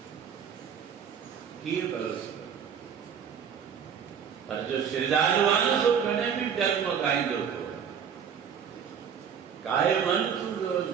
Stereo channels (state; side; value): quieter; left; 7.6 dB